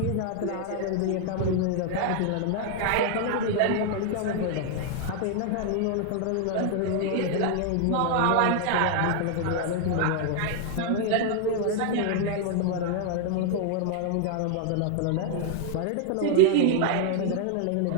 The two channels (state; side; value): different; both; correlation 0.00